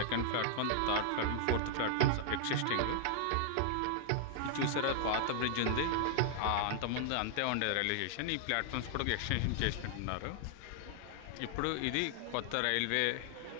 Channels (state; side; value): different; both; correlation -0.01